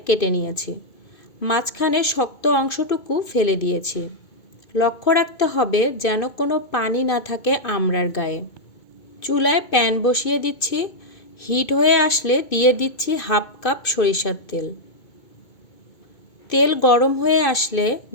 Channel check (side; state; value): right; late; 2.2 ms